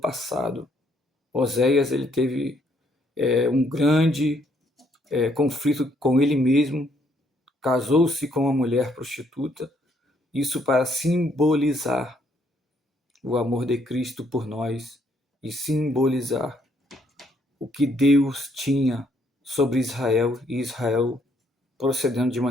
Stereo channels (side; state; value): both; normal; correlation 0.69